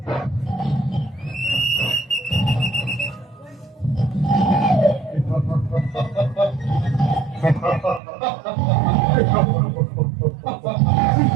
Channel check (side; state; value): left; drops out; at 8.0 s